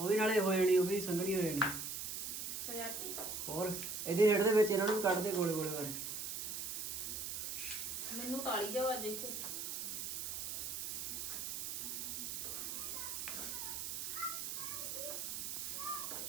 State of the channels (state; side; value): noise; right; hiss, 4 dB below the sound